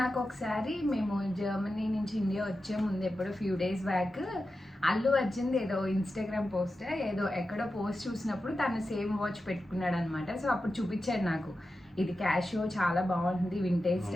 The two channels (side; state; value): both; normal; correlation 0.91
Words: నాకు ఒకసారి మేము జర్మనీ నుంచి ఇండియా వచ్చే ముందు ఎప్పుడో few days back Allu Arjun ఏదో ఇన్స్టాగ్రామ్ పోస్ట్ ఏదో ఎక్కడో పోస్ట్ చూసినప్పుడు తను సేమ్ వాచ్ పెట్టుకున్నాడు అనమాట. సో అప్పుడు చూపించాడు నాకు. ఇది క్యాషియో, చాలా బాగుంటుంది, వింటేజ్